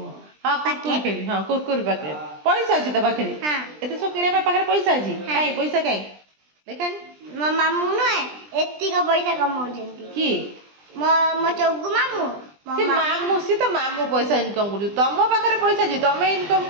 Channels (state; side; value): late; left; 20 ms